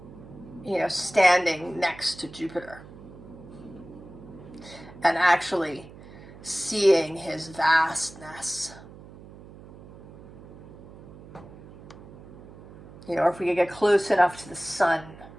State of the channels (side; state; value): right; noise; hum, 18 dB below the sound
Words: standing next to Jupiter and actually seeing his vastness. Or if we could get close enough to the sun